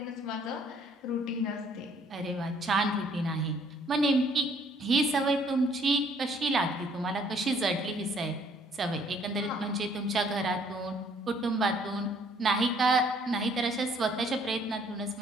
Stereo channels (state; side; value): normal; both; correlation 0.63